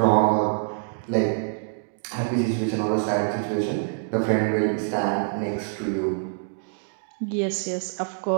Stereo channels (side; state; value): left; silent; digital silence